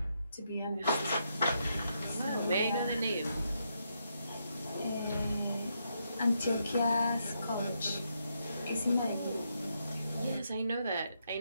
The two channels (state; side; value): inverted; both; correlation -0.80